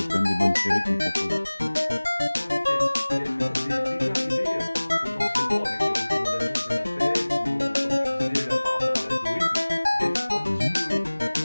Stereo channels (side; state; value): both; inverted; correlation -1.00